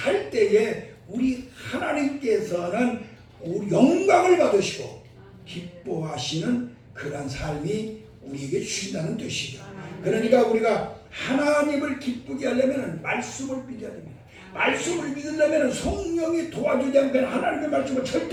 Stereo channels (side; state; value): both; identical; correlation 1.00